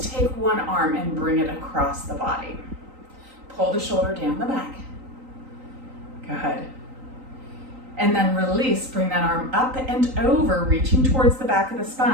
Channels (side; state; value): left; late; 3.9 ms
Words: take one arm and bring it across the body. Pull the shoulder down the back. Good. And then release. Bring that arm up and over, reaching towards the back of the